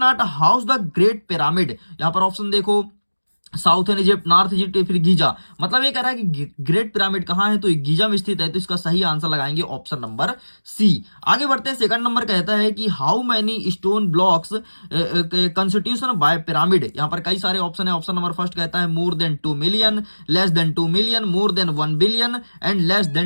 house the great pyramid. यहां पर ऑप्शन देखो, साउथर्न इजिप्ट, नॉर्थ इजिप्ट या फिर गीजा। मतलब ये कह रहा है कि ग्रेट पिरामिड कहां है, तो ये गीजा में स्थित है। तो इसका सही आंसर लगाएंगे ऑप्शन नंबर सी। आगे बढ़ते हैं, सेकंड नंबर कहता है कि how many stone blocks constitution by pyramid. यहां पर कई सारे ऑप्शन है। ऑप्शन नंबर फर्स्ट कहता है more than 2 million, less than 2 million, more than 1 billion and less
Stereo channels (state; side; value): inverted; both; correlation -1.00